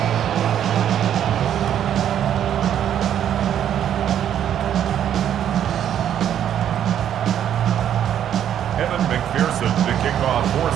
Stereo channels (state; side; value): quieter; left; 10.0 dB